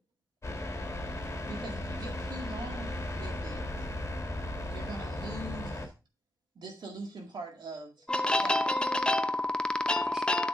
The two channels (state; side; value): normal; both; correlation 0.81